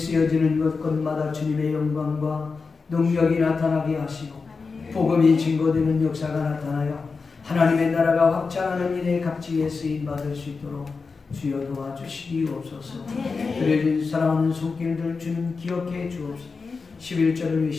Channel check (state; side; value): quieter; right; 4.6 dB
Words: 곳곳마다 주님의 영광과 능력이 나타나게 하시고 복음이 증거되는 역사가 나타나요 하나님의 나라가 확장하는 일에 값지게 쓰임받을 수 있도록 주여 도와주시옵소서. 드려진 사랑하는 손길들 주님 기억해 주옵소서. 11절을